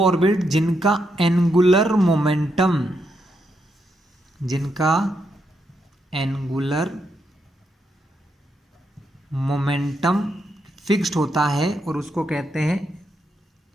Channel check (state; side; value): normal; both; correlation 0.81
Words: ऑर्बिट जिनका एंगुलर मोमेंटम फिक्स्ड होता है, और उसको कहते हैं,